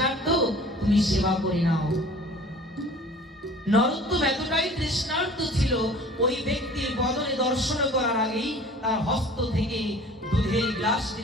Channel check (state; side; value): normal; both; correlation 0.46